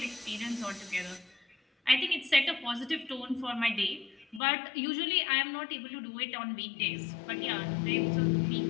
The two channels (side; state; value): right; drops out; at 4.4 s